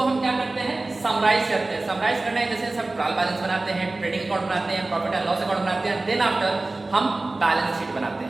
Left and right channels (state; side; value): quieter; left; 3.1 dB